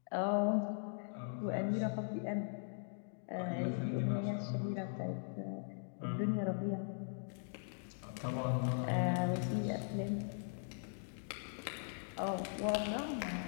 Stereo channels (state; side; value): silent; right; digital silence